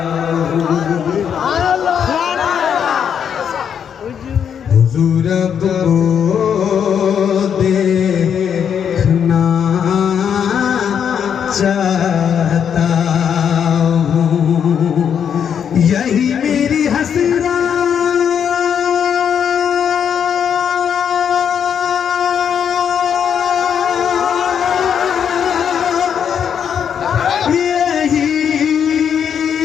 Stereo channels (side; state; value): right; quieter; 8.0 dB